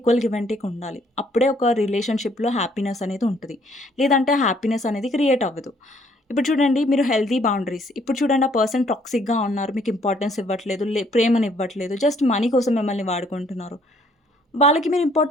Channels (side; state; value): both; normal; correlation 0.64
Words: గివ్ అండ్ టేక్ ఉండాలి. అప్పుడే ఒక రిలేషన్‌షిప్‌లో హ్యాపీనెస్ అనేది ఉంటది. లేదంటే హ్యాపీనెస్ అనేది క్రియేట్ అవ్వదు. ఇప్పుడు చూడండి మీరు హెల్తీ బౌండరీస్. ఇప్పుడు చూడండి ఆ పర్సన్ టాక్సిక్‌గా ఉన్నారు. మీకు ఇంపార్టెన్స్ ఇవ్వట్లేదు. ప్రేమనివ్వట్లేదు. జస్ట్ మనీ కోసం మిమ్మల్ని వాడుకుంటున్నారు. వాళ్ళకి మీరు